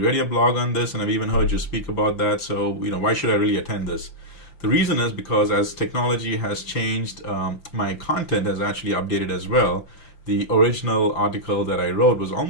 your blog on this, and I've even heard you speak about that. So, why should I really attend this? The reason is because as technology has changed, my content has actually updated as well. The original article that I wrote was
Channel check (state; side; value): late; right; 5.9 ms